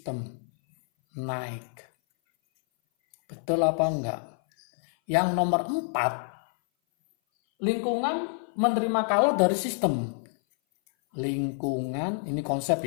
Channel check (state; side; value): silent; right; 57 dB below the other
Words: naik. Betul apa enggak? Yang nomor 4, lingkungan menerima kalor dari sistem. Lingkungan, ini konsep